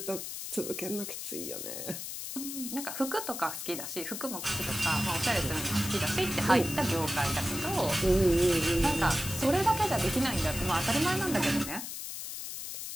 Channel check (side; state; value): left; noise; hiss, 7 dB below the sound